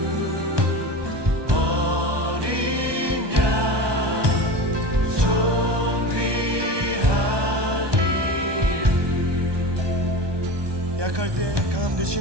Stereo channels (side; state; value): left; late; 1.2 ms